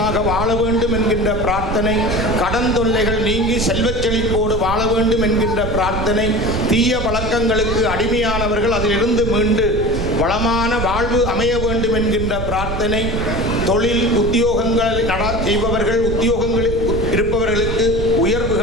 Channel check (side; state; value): right; noise; rumble, 5 dB below the sound